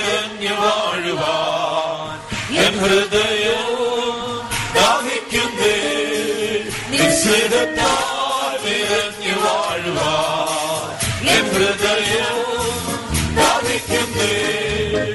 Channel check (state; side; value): identical; both; correlation 1.00